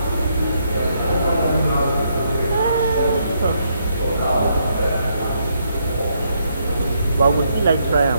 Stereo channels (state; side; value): inverted; both; correlation -0.75